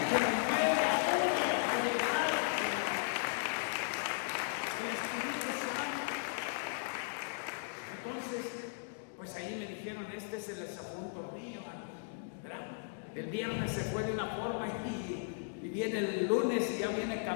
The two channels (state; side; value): silent; right; digital silence